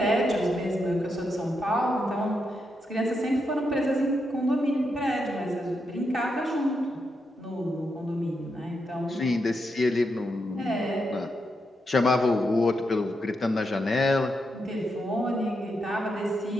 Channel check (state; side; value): normal; both; correlation 0.83